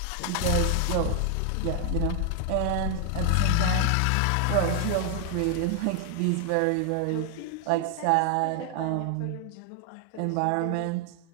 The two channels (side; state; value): both; different; correlation 0.00